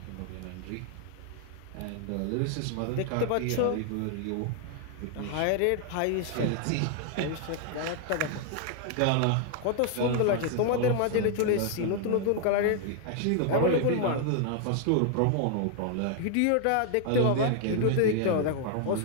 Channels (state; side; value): different; both; correlation 0.00